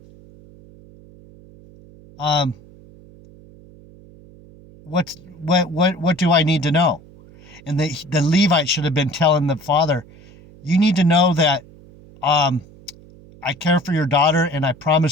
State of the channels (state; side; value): noise; right; hum, 23 dB below the sound